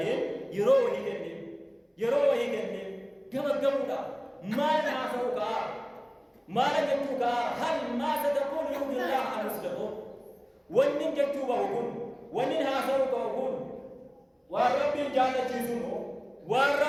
يروه كنن كما ما نعصوك ما نجتوك هل ما ستقول يوم الله عن مسلمون ونن جتوك وقل ونن هاسوك وقل وربي جانة جيسونه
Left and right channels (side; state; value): both; identical; correlation 1.00